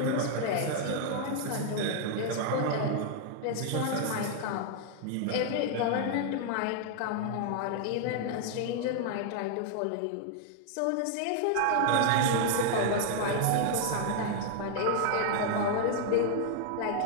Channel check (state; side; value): different; both; correlation 0.00